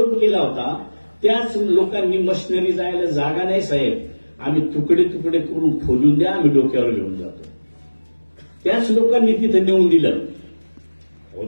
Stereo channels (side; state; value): both; inverted; correlation -1.00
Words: केला होता त्याच लोकांनी मशिनरी जायला जागा नाही साहेब, आम्ही तुकडे तुकडे करून खोलून द्या, आम्ही डोक्यावर घेऊन जातो. त्याच लोकांनी तिथं नेऊन दिलं.